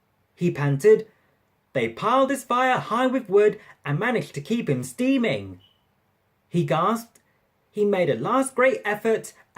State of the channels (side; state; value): both; identical; correlation 1.00